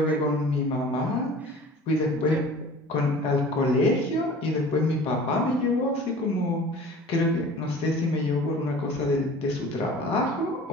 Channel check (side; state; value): both; normal; correlation 0.43